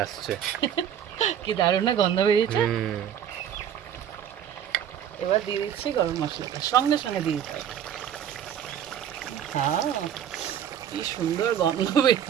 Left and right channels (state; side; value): quieter; left; 9.5 dB